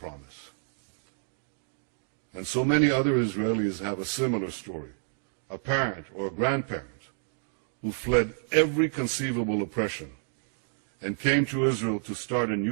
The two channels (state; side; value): silent; left; digital silence